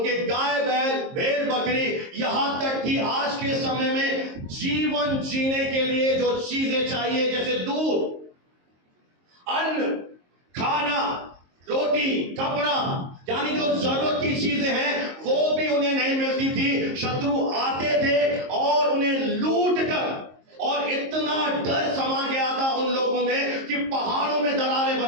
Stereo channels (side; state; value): left; late; 22 ms